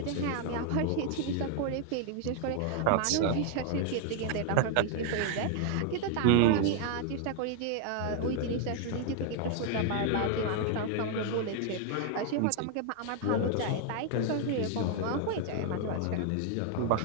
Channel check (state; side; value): different; both; correlation 0.00